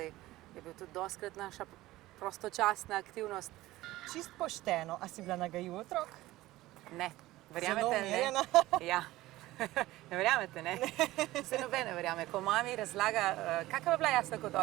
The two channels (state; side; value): quieter; left; 17.3 dB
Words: je bil tudi dostikrat naša prostočasna aktivnost. Čist pošteno, a si bila nagajiv otrok? Ne, verjamete, ne? Ja, ne verjamete, ne? Se noben ne verjame. Ko mami razlaga, kakva je bila Jasna kot